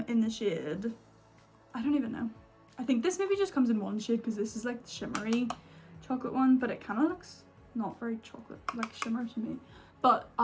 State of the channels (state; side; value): identical; both; correlation 1.00